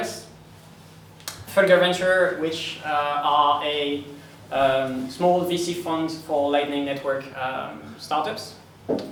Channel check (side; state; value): both; identical; correlation 1.00